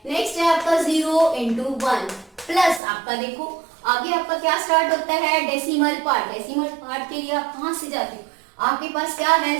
नेक्स्ट है आपका 0 into 1 प्लस आपका देखो आगे आपका क्या स्टार्ट होता है डेसिमल पार्ट। डेसिमल पार्ट के लिए आप कहां से जाते हो, आपके पास क्या है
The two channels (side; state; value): left; drops out; at 2.8 s